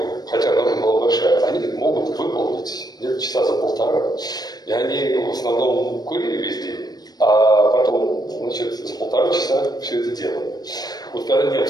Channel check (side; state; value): right; late; 0.19 ms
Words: хотя норма была большая, они могут выполнить где-то часа за полтора. И они в основном курили весь день, а потом, значит, за полтора часа все это делали. Вот когда